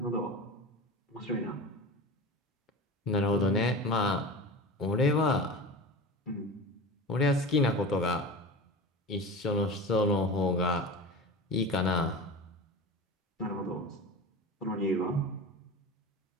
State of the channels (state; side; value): normal; both; correlation 0.31